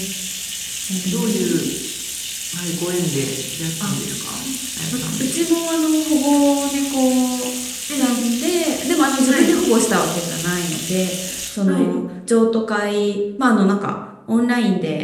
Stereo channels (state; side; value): identical; both; correlation 1.00